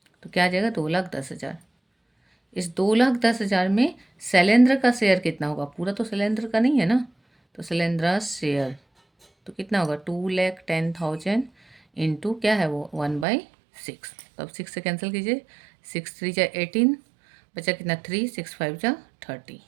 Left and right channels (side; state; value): left; drops out; at 13.2 s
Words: तो क्या आ जाएगा? 2,10,000। इस 2,10,000 में शैलेंद्र का शेयर कितना होगा? पूरा तो शैलेंद्र का नहीं है ना, तो शैलेंद्र शेयर तो कितना होगा? 2,10,000 इंटू क्या है वो? 1/6। तो अब 6 से कैंसिल कीजिए, 6 3 जा 18, बचा कितना? 3, 6 5 जा 30,